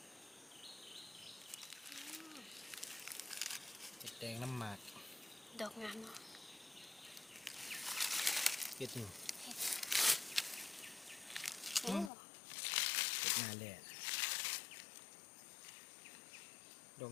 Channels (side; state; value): right; drops out; at 12.1 s